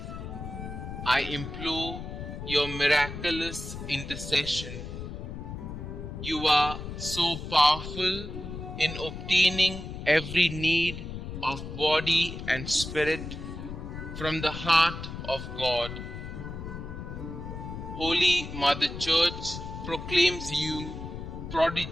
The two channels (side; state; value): left; noise; rumble, 8 dB below the sound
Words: I implore your miraculous intercession. You are so powerful in obtaining every need of body and spirit from the heart of God. Holy Mother Church proclaims you